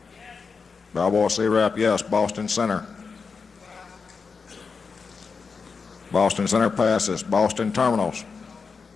Balboa C-Rap, yes. Boston Center. Boston Center passes. Boston Terminals.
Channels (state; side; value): quieter; right; 5.1 dB